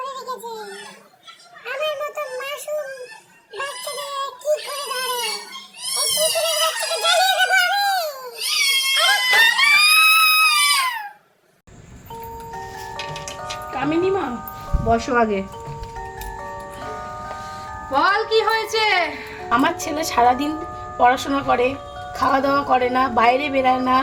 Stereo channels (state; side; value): identical; both; correlation 1.00